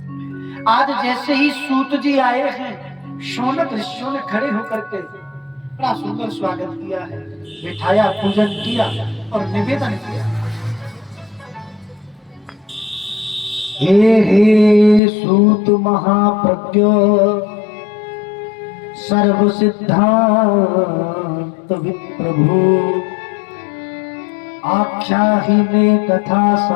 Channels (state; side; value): drops out; right; at 15.0 s